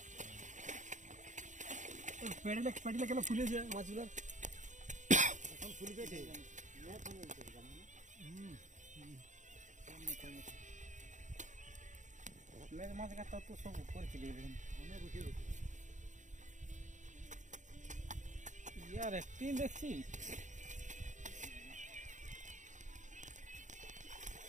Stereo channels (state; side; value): late; left; 0.36 ms